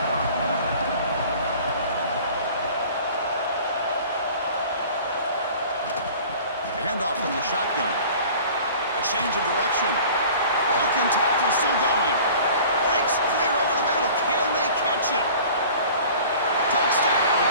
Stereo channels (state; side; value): inverted; both; correlation -0.45